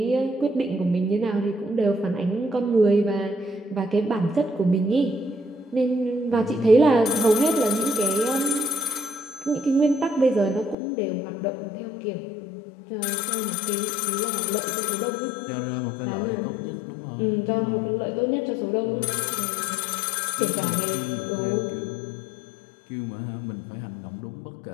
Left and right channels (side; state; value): right; drops out; at 10.8 s